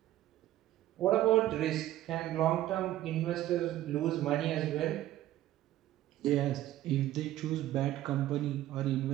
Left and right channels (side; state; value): left; quieter; 14.1 dB